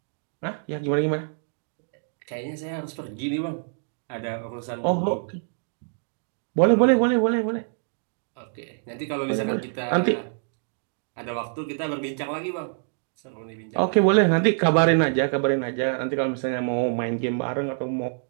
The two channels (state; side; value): silent; left; digital silence